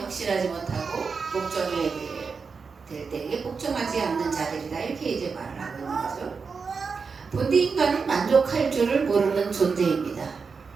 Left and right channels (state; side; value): quieter; left; 5.2 dB